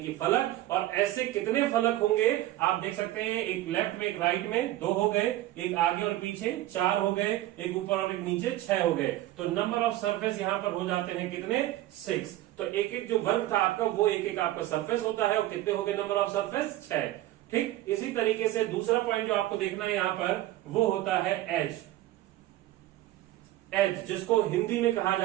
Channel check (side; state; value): left; quieter; 15.4 dB